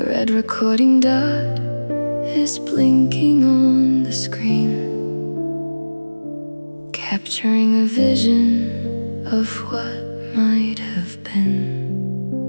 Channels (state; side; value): inverted; both; correlation -1.00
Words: red recording dot is blinking on the screen, capturing a vision of what might have been.